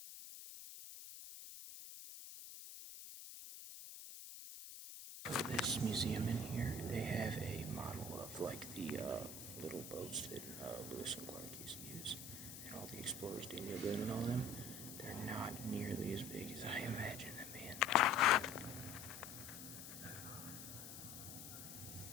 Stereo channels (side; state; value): left; noise; hiss, 10 dB below the sound